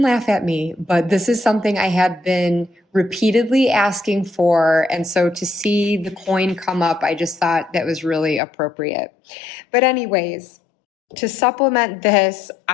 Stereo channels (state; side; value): drops out; right; at 8.4 s